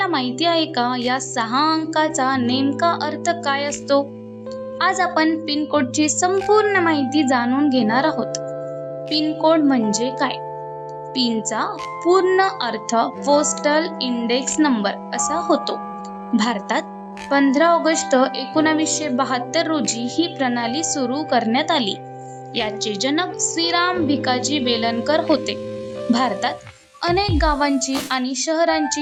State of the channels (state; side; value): identical; both; correlation 1.00